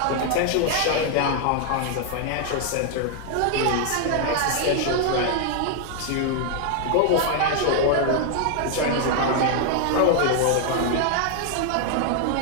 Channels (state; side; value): different; both; correlation 0.00